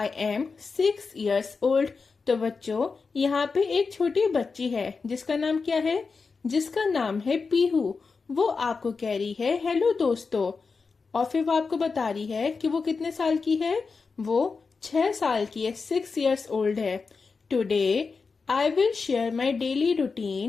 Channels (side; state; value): right; quieter; 4.7 dB